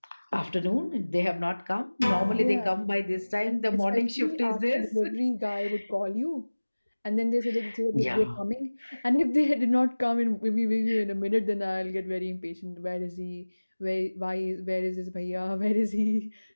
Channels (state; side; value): inverted; both; correlation -1.00